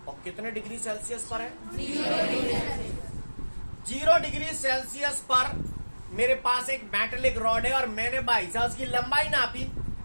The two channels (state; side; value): inverted; both; correlation -1.00